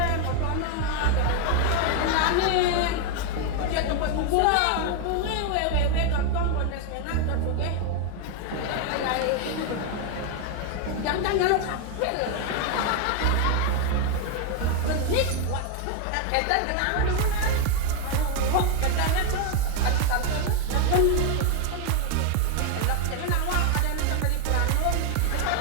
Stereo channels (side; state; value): both; different; correlation 0.01